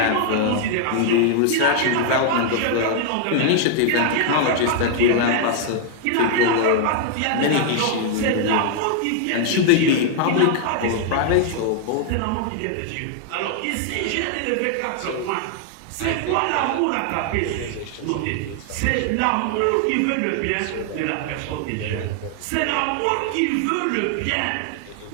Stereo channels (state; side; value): different; both; correlation 0.00